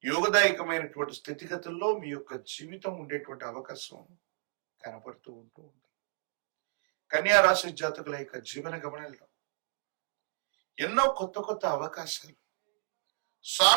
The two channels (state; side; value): silent; left; 56 dB below the other